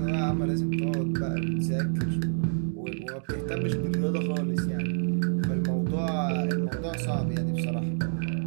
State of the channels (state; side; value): silent; left; digital silence